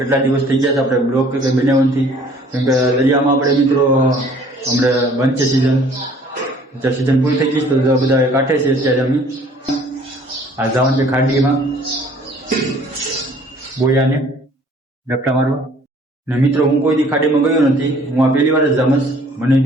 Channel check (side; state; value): both; normal; correlation 0.55